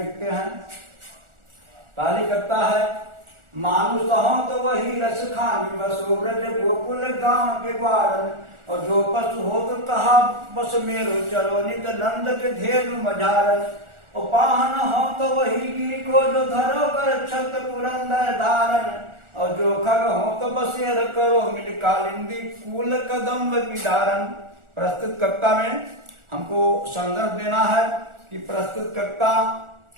हैं। पहली कविता है, मानुष हो तो वही रसखान, बसो ब्रज गोकुल गांव के ग्वार, और जो पशु हो तो कहा बस मेरो, चलो नित नंद के धेनु मझार। और पाहन हो तो वही गिरी को, जो धरो कर छत पुरंदर धारण, और जो खग हो तो बसेर करो, मिल कालिंदी कूल कदम्ब की धारण। प्रस्तुत कविता में हमको संदर्भ देना है कि प्रस्तुत कविता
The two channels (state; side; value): late; left; 1.4 ms